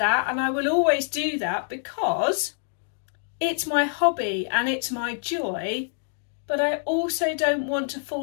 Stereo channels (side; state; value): right; silent; digital silence